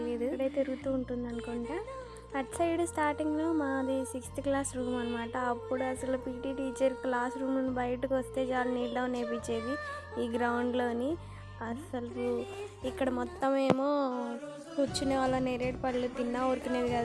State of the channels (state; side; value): identical; both; correlation 1.00